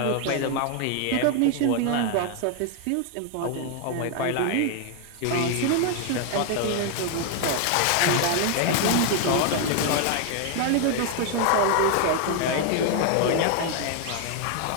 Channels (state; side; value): different; both; correlation 0.00